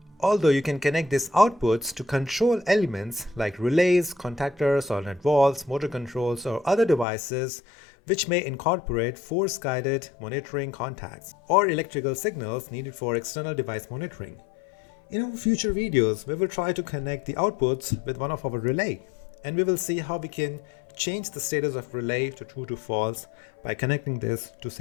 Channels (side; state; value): right; drops out; at 7.1 s